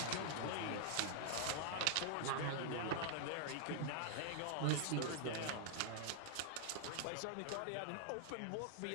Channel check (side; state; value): both; different; correlation -0.01